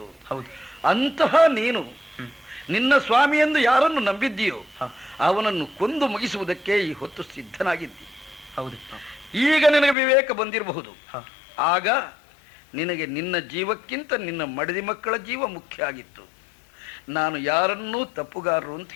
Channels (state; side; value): drops out; right; at 10.0 s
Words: ಹೌದು. ಅಂತಹ ನೀನು ನಿನ್ನ ಸ್ವಾಮಿ ಎಂದು ಯಾರನ್ನು ನಂಬಿದ್ದೀಯೋ ಅವನನ್ನು ಕೊಂದು ಮುಗಿಸುವುದಕ್ಕೆ ಈ ಹೊತ್ತು ಸಿದ್ಧನಾಗಿದ್ದಿ. ಹೌದು. ಈಗ ನಿನಗೆ ವಿವೇಕ ಬಂದಿರಬಹುದು. ಆಗ ನಿನಗೆ ನಿನ್ನ ಜೀವಕ್ಕಿಂತ ನಿನ್ನ ಮಡದಿ ಮಕ್ಕಳ ಜೀವ ಮುಖ್ಯ ಆಗಿತ್ತು. ನಾನು ಯಾರನ್ನೂ ತಪ್ಪುಗಾರರು ಅಂತ